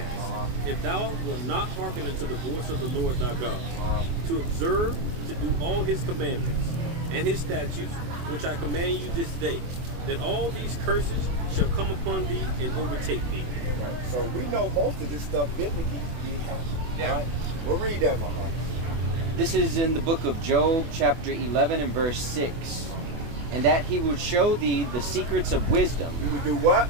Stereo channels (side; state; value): left; late; 24 ms